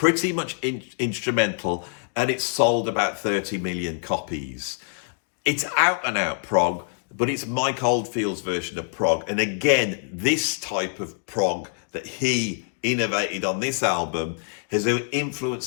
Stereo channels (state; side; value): silent; right; digital silence